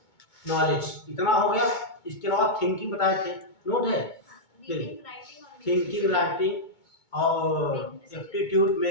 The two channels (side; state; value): right; late; 2.2 ms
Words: नॉलेज। इतना हो गया। इसके अलावा थिंकिंग बताए थे, नोट है? थिंकिंग, राइटिंग और एप्टीट्यूड,